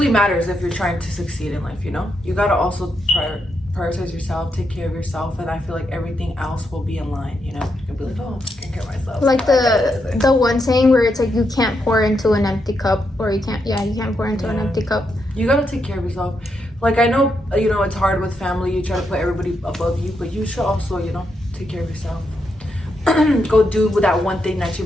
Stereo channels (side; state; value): both; normal; correlation 0.81